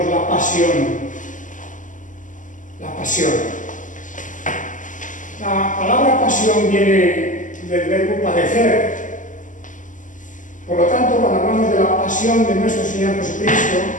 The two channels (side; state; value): right; late; 0.37 ms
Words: la pasión. La pasión. La palabra pasión viene del verbo padecer. Por lo tanto, cuando hablamos de la pasión de nuestro Señor Jesucristo,